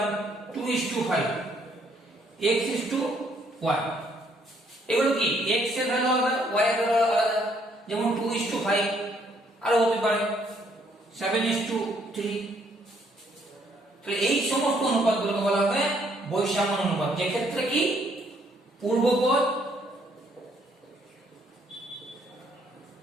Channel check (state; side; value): normal; both; correlation 0.68